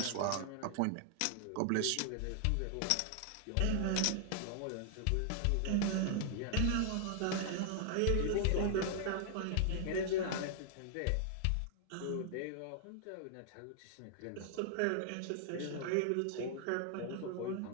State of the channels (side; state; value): both; different; correlation 0.00